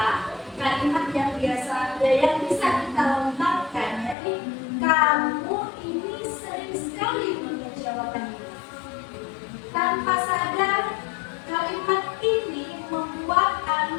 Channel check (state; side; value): drops out; right; at 4.2 s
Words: kalimat yang biasa yang bisa kita lontarkan, jadi kamu ini sering sekali mengecewakan diri. Tanpa sadar, kalimat ini membuat